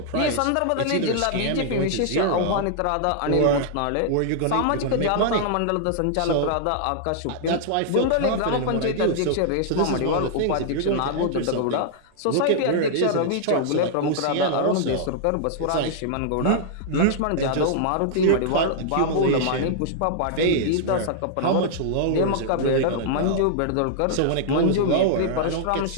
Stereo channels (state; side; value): different; both; correlation -0.01